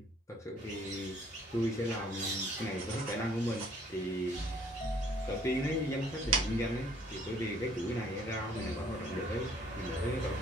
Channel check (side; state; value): both; normal; correlation 0.60